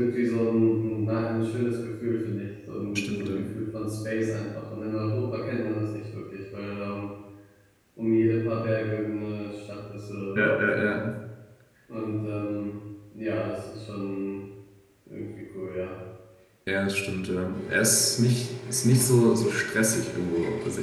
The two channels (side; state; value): both; identical; correlation 1.00